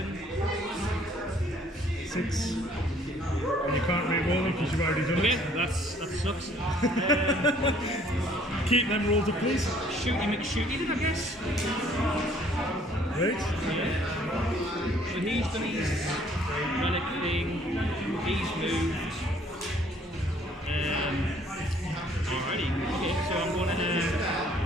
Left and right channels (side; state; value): both; normal; correlation 0.60